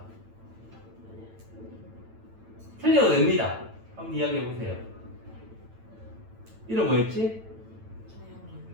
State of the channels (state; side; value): late; left; 9.0 ms